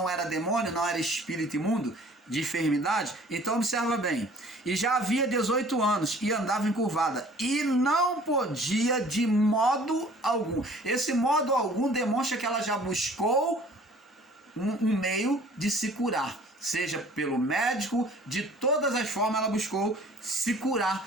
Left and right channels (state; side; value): normal; both; correlation 0.52